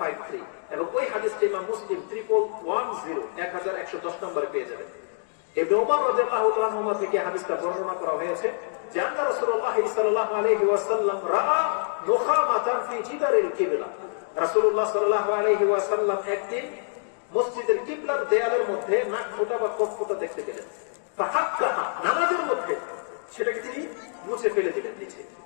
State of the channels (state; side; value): silent; right; digital silence